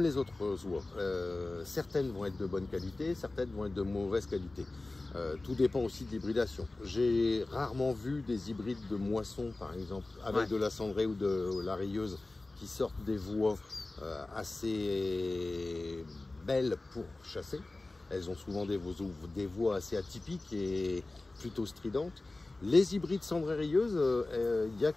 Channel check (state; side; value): quieter; right; 3.1 dB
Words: autres oies. Certaines vont être de bonne qualité, certaines vont être de mauvaise qualité. Tout dépend aussi de l'hybridation. J'ai rarement vu des hybrides de moisson, par exemple, avec de la cendrée ou de la rieuse, qui sortent des voies assez belles pour chasser. Elles ont souvent des voies assez atypiques et plutôt stridentes. Les hybrides cendrées-rieuses, il y a